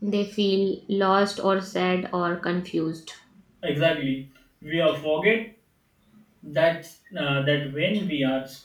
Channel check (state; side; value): identical; both; correlation 1.00